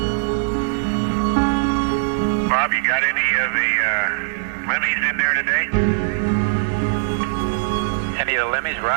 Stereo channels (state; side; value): silent; left; digital silence